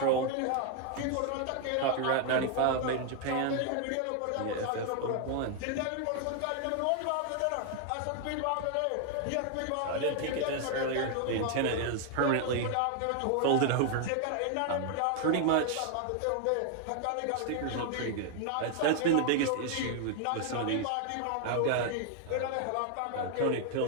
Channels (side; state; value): both; different; correlation 0.00